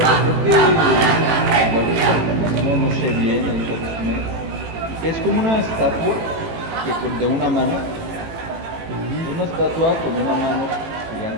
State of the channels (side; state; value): left; late; 18 ms